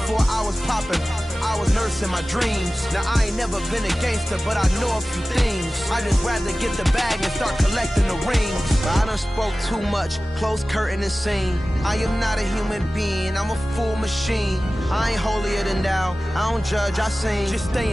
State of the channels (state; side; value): normal; both; correlation 0.96